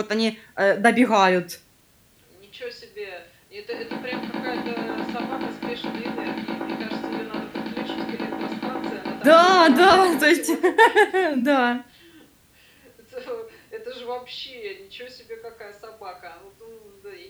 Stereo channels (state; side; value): identical; both; correlation 1.00